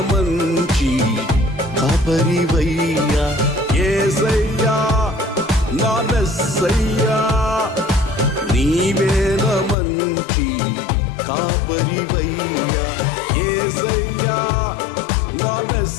మంచి కాపరివయ్యా యేసయ్యా నా మెస్సయ్యా నీవే నా మంచి కాపరివయ్యా యేసయ్యా నా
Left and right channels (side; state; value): right; drops out; at 9.8 s